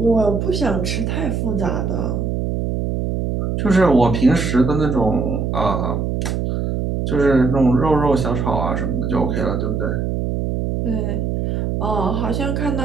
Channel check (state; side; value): noise; right; hum, 1 dB below the sound